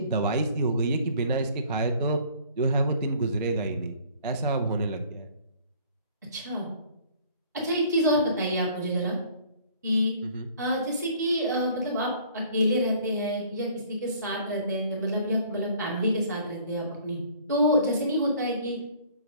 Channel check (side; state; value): both; inverted; correlation -0.54